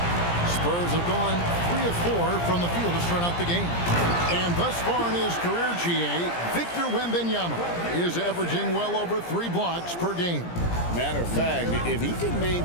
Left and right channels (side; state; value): right; late; 17 ms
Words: Spurs have gone 3 of 4 from the field to start out the game. And thus far in his career, GA, Victor Wembanyama is averaging well over 3 blocks per game. Matter of fact, if he can